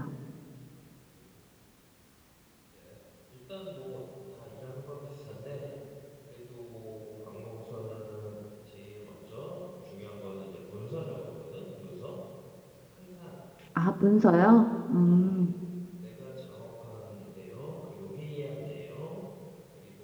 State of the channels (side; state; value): both; identical; correlation 1.00